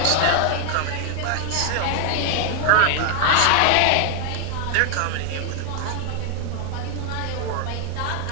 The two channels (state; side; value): different; both; correlation 0.00